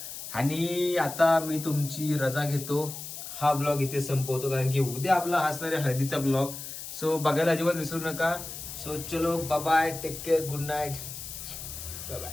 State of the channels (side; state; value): left; noise; hiss, 9 dB below the sound